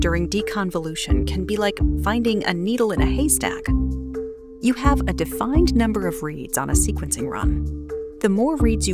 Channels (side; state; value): both; identical; correlation 1.00